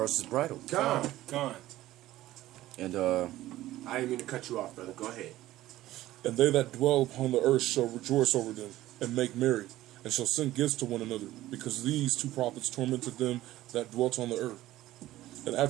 is bridled. Con. And I didn't mean to cut you off, brother. Go ahead. And they that dwell upon the earth shall rejoice over them, and make merry, and shall send gifts to one another, because these 2 prophets tormented them that dwelt on the earth. And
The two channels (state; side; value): quieter; left; 15.4 dB